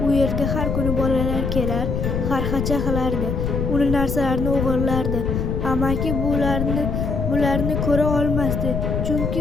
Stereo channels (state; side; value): noise; left; rumble, 1 dB below the sound